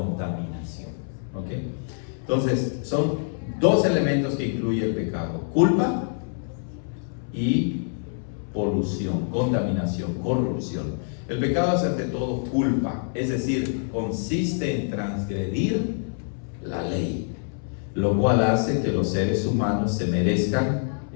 ¿Ok? Entonces, son dos elementos que incluye el pecado: culpa y polución, contaminación, corrupción. El pecado es ante todo culpa, es decir, consiste en transgredir la ley, lo cual hace que los seres humanos se merezcan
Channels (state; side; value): silent; right; 61 dB below the other